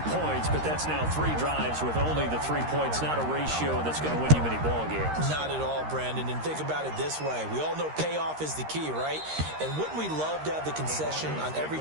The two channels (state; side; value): late; left; 13 ms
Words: points, but that's now 3 drives with only the 3 points, not a ratio that's going to win you many ball games. Not at all, Brandon. And think about it this way. We all know payoff is the key, right? And wouldn't we love to have the concession on every